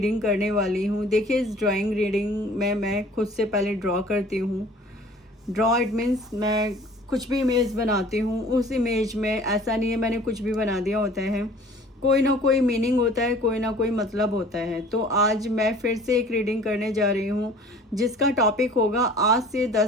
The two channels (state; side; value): normal; both; correlation 0.49